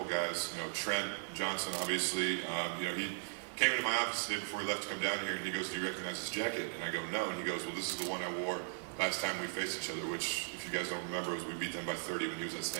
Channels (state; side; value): silent; left; digital silence